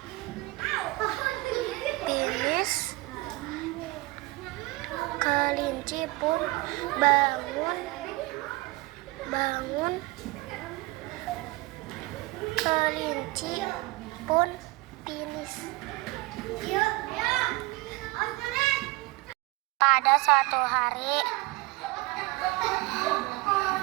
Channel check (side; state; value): left; quieter; 22.2 dB